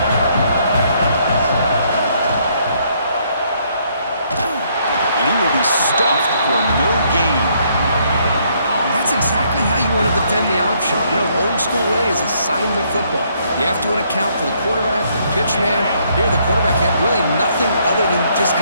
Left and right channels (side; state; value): both; inverted; correlation -0.69